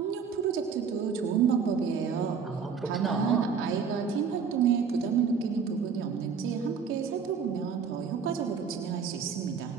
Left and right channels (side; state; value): left; quieter; 6.3 dB